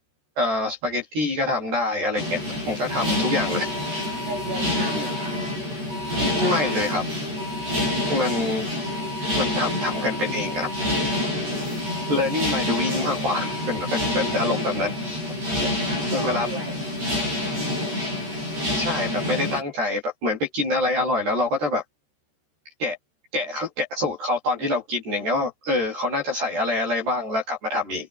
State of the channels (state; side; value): late; left; 13 ms